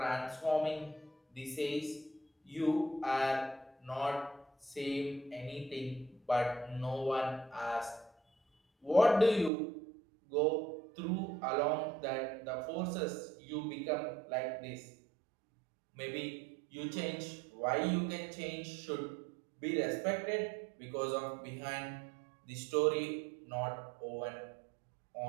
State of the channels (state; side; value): drops out; left; at 9.5 s